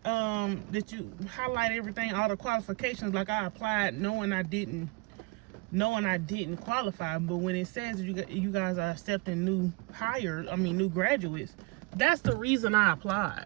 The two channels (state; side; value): quieter; left; 26.1 dB